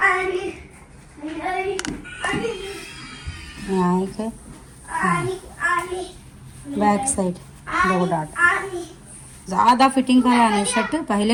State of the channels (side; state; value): both; identical; correlation 1.00